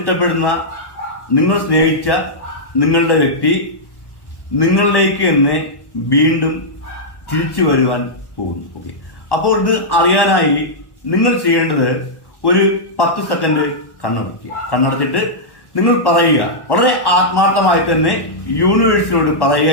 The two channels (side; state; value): right; late; 1.1 ms